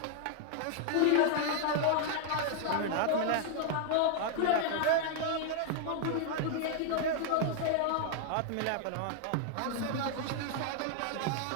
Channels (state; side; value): different; both; correlation 0.00